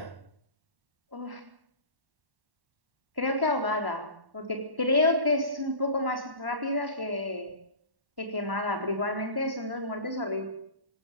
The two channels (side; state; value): left; late; 1.1 ms